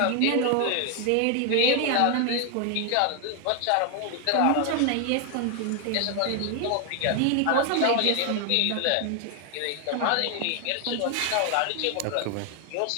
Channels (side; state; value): both; different; correlation 0.01